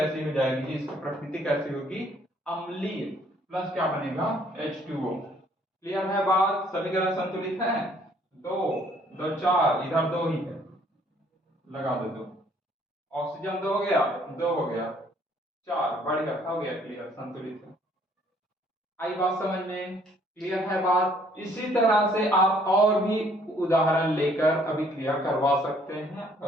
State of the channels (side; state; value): both; normal; correlation 0.62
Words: हो जाएगी, इसकी प्रकृति कैसी होगी, अम्लीय, प्लस क्या बनेगा, H2O। क्लियर है बात, समीकरण संतुलित है, दो दो चार, इधर दो ही है, लगा दो दो, ऑक्सीजन 2 हो गया, 2 हो गया, 4, बढ़िया, हो गया, क्लियर, संतुलित है। आई बात समझ में, क्लियर है बात। इसी तरह से आप और भी उदाहरण लेकर अभी क्लियर करवा सकते हैं,